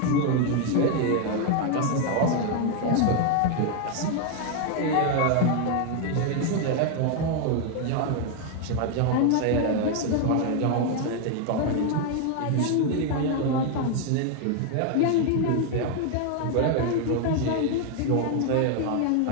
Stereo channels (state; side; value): different; both; correlation 0.01